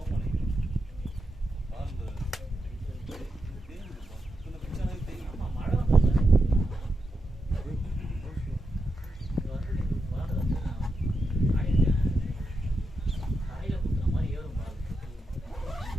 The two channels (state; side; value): normal; both; correlation 0.87